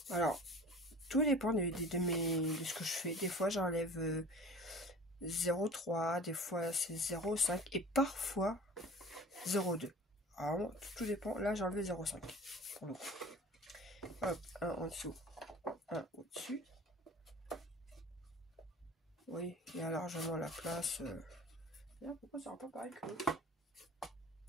Alors, tout dépend de ce que je fais. Des fois, j'enlève 0,3, des fois c'est 0,5 et parfois 0,2. Alors, tout dépend. Là, j'ai enlevé 0,5 pour le coup. Hop, un en dessous, un au-dessus. Oui, il y a largement la place. Là, pourquoi ça rend pas pareil que l'autre?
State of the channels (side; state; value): both; normal; correlation 0.42